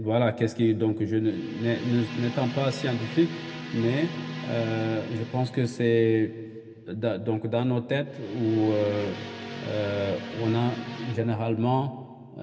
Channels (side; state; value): both; identical; correlation 1.00